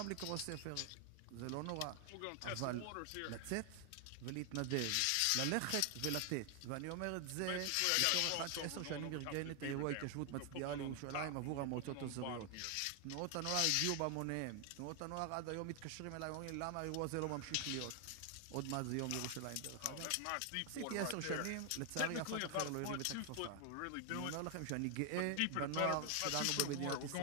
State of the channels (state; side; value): different; both; correlation 0.00